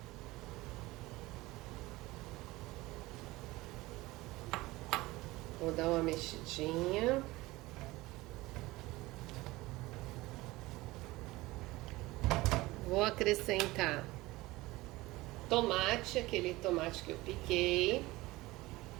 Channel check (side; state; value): left; quieter; 19.9 dB